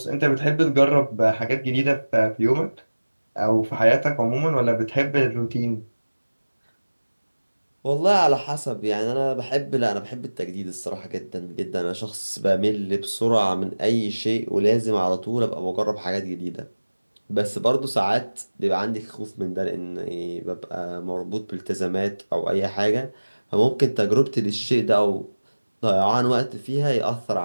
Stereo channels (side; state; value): both; inverted; correlation -1.00